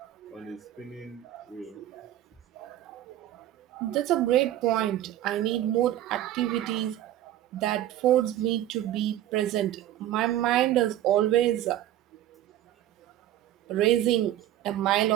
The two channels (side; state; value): left; quieter; 12.9 dB